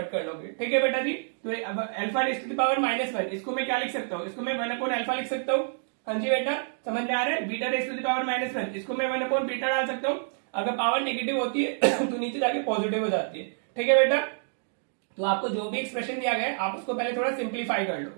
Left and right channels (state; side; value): silent; left; digital silence